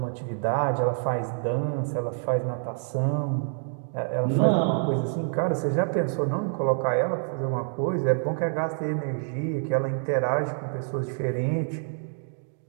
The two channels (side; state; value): left; silent; digital silence